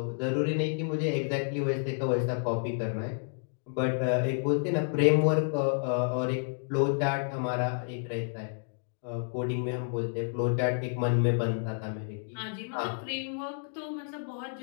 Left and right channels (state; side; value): silent; right; digital silence